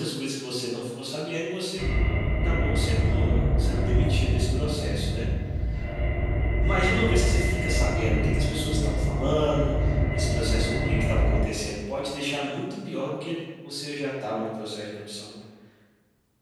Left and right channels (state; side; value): identical; both; correlation 1.00